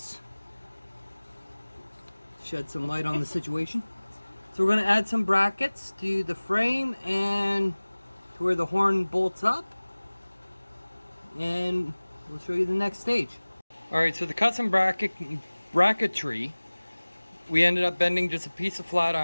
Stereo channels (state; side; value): inverted; both; correlation -1.00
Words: Shed some light on the situation. So we're going to add some brackets to the frame and to where the horn bolts up. And we'll show you the next stage. Alright, so the custom bracketry, we ended up bending just a piece of flat